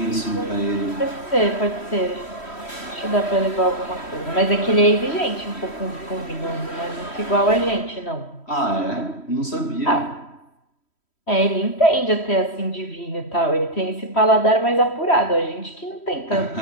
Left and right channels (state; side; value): late; right; 3.1 ms